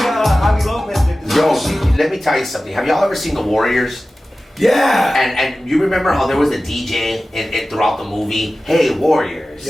Yo, let me tell you something. Have y'all ever seen The Warriors? Yeah. And you remember how there was a DJ in throughout the movie? Hey, Warriors.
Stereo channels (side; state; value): both; normal; correlation 0.96